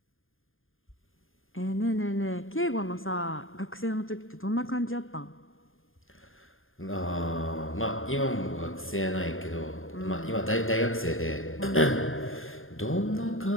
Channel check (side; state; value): right; late; 0.59 ms